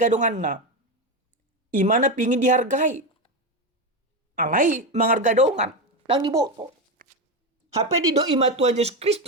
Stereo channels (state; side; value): normal; both; correlation 0.13